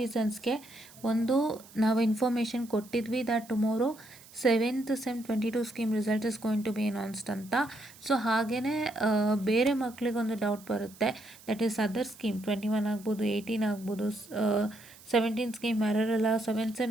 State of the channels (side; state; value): right; noise; hiss, 22 dB below the sound